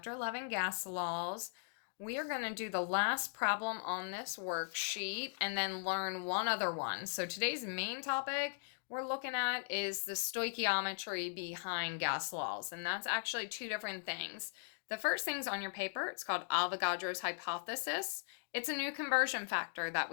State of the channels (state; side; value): silent; right; digital silence